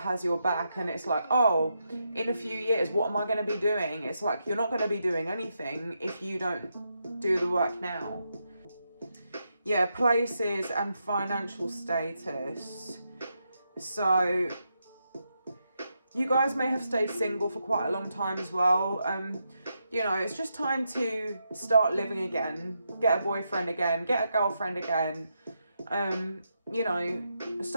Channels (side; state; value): both; inverted; correlation -0.83